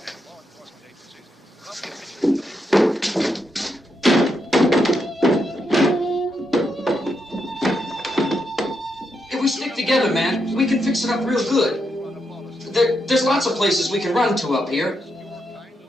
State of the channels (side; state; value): both; normal; correlation 0.82